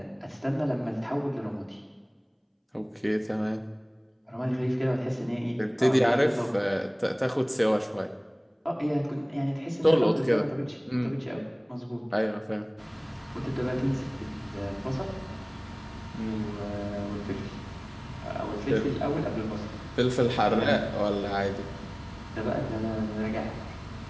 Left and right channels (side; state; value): both; identical; correlation 1.00